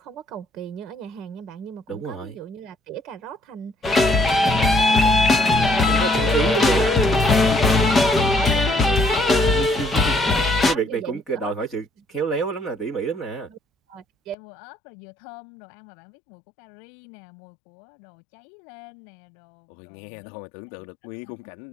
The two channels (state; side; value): drops out; right; at 14.4 s